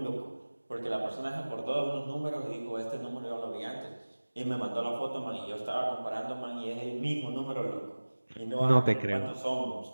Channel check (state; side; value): inverted; both; correlation -1.00